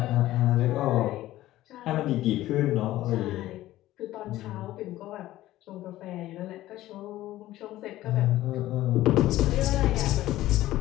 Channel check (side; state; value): right; quieter; 15.3 dB